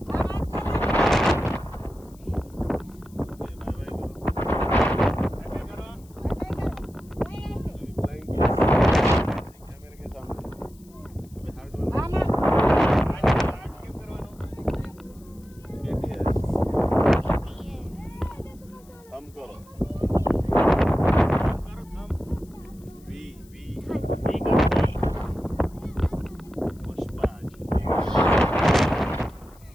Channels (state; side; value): noise; left; hiss, 28 dB below the sound